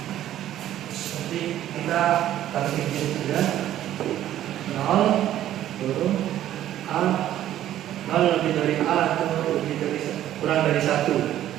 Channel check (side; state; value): left; quieter; 12.4 dB